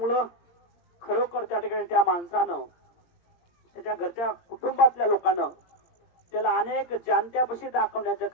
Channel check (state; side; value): late; right; 17 ms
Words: खरोखर त्या ठिकाणी त्या माणसानं, त्याच्या घरच्या कुटुंबातल्या लोकांना त्याला अनेक जाणत्यापाशी दाखवण्याचं